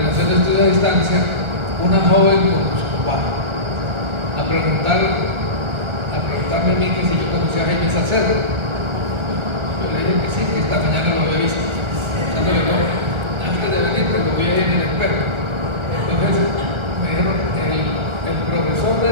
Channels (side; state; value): left; late; 1.4 ms